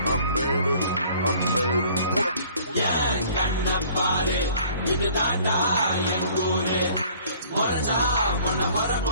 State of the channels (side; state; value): both; inverted; correlation -0.53